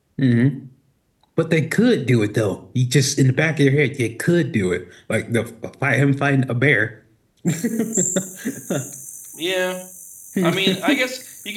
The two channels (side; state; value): both; identical; correlation 1.00